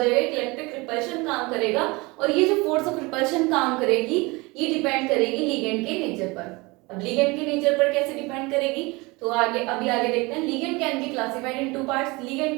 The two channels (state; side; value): quieter; left; 24.6 dB